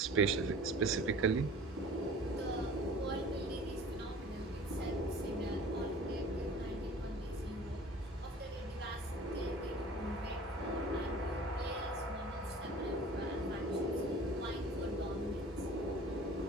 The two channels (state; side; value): normal; both; correlation 0.44